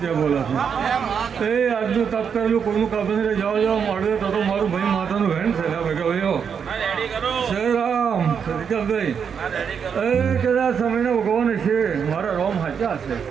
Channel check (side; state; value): left; quieter; 7.0 dB